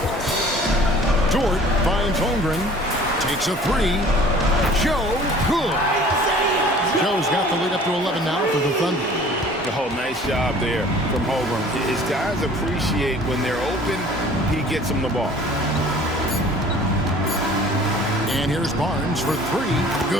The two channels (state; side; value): normal; both; correlation 0.49